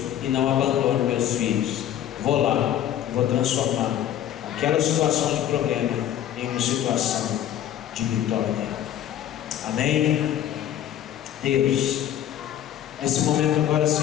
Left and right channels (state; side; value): quieter; right; 11.0 dB